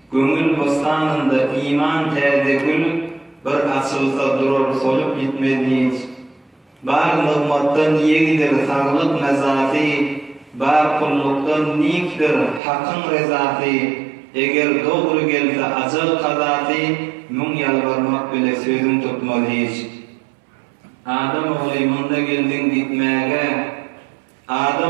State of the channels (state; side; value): drops out; left; at 12.6 s